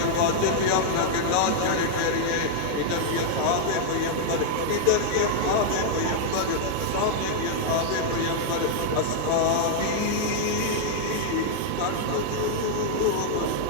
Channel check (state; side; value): different; both; correlation 0.00